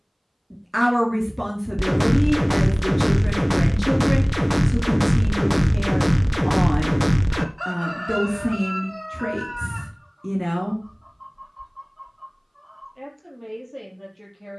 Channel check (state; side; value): identical; both; correlation 1.00